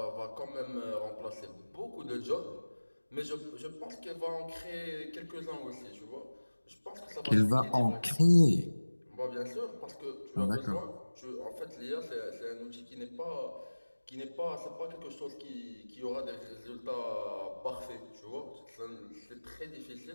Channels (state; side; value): inverted; both; correlation -1.00